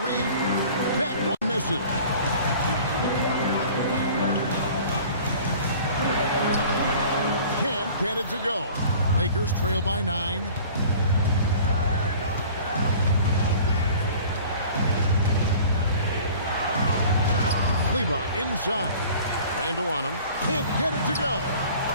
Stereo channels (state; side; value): inverted; both; correlation -0.46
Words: That one misses. Can't get it to go. Lakers trail by 9. Kleba inside. Randall on him. Can't get it to go.